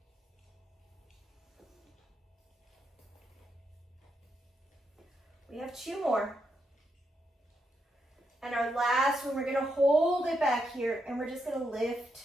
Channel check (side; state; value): both; normal; correlation 0.81